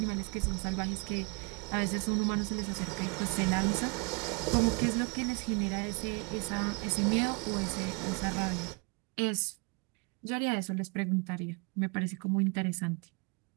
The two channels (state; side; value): quieter; left; 31.4 dB